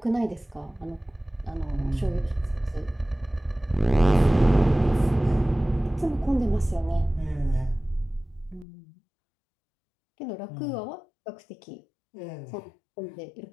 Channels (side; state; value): right; drops out; at 8.7 s